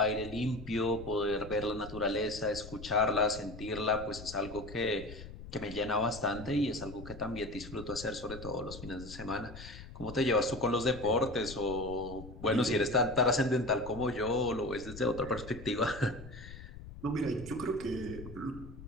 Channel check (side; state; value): left; noise; rumble, 13 dB below the sound